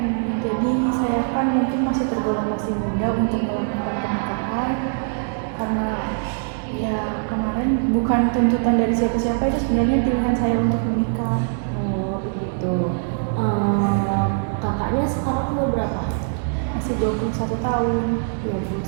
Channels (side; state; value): left; silent; digital silence